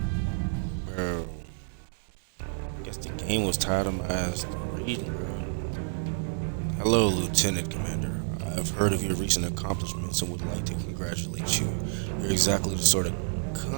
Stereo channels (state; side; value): silent; left; digital silence